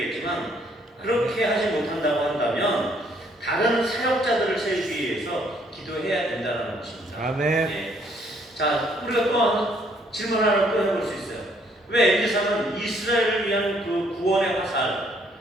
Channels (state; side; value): normal; both; correlation 0.66